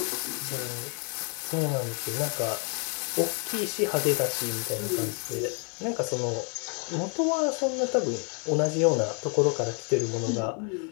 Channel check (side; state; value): right; quieter; 39.1 dB